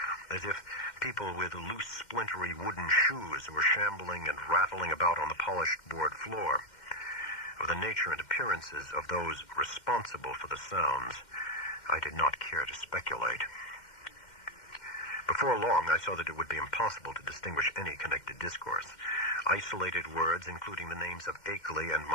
as if people with loose, splintery wooden shoes were shambling and rattling about on the polished board floor. Of the nature and appearances of those responsible for the sounds, I did not care to speculate. Before long, I saw that it would be impossible to distinguish any connected discourse. Isolated words, including the names of Akeley and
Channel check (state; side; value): late; right; 2.1 ms